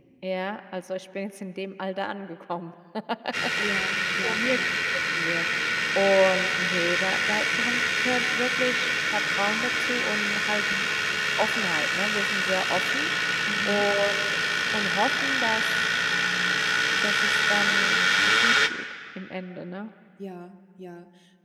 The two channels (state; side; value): identical; both; correlation 1.00